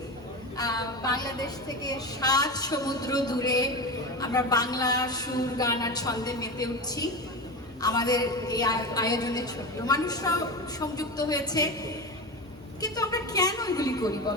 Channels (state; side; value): normal; both; correlation 0.23